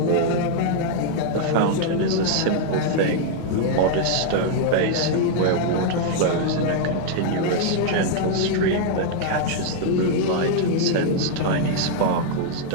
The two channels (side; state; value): both; different; correlation -0.01